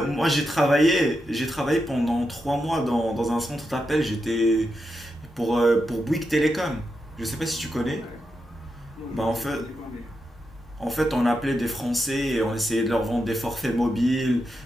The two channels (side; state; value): both; normal; correlation 0.86